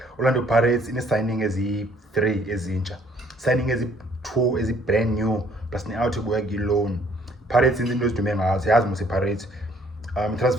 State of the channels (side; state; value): both; normal; correlation 0.62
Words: Orlando Pirates ine signing ezi3 ezintsha, signing ezi2 ezi brand new plus ne out ebuya ki loan. Pirates into ezidume ngazo yazi mose Pirates